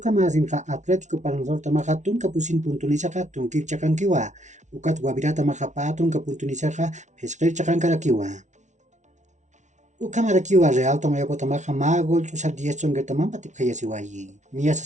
masinqa Atlético Palmaflor tamaqa tun kapusin puntunisaka tunkir chakankiwa. Ukat Guavirata maqa patun kapuntunisaka pesqir chakankarakiwa. Ukamarakiwa Real Tomayapo tamaqa ma gol chusar 10 chongertaman patip khayasiwayi. Nia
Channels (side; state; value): left; late; 0.35 ms